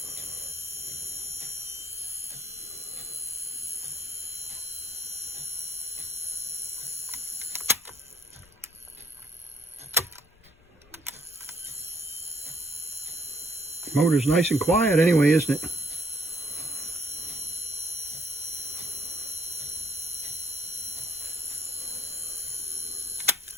Motor's nice and quiet anyway, isn't it?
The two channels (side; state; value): left; noise; rumble, 28 dB below the sound